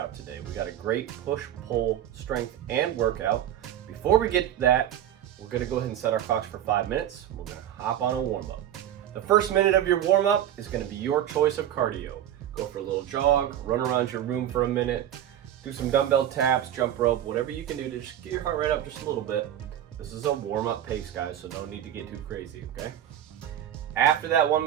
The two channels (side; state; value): left; quieter; 11.1 dB